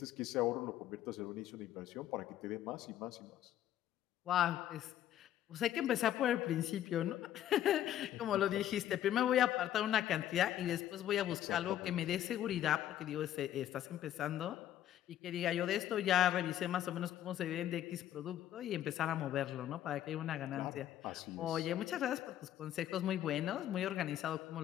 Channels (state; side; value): quieter; right; 11.8 dB